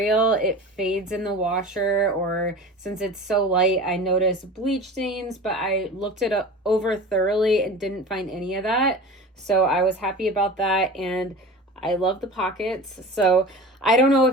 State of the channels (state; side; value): normal; both; correlation 0.35